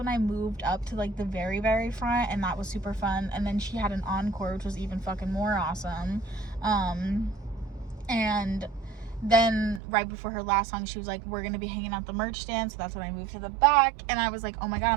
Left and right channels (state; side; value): drops out; left; at 9.8 s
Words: I moved up to like the very, very front, and that was super fun. And then she had an encore, which was even fucking more awesome. And then right before her last song, she was like, we're gonna be hanging out the merch stand. So that's when I moved to the back, and I was like, oh my god,